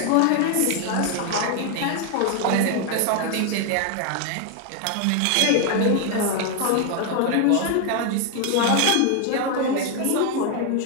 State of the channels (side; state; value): both; different; correlation 0.01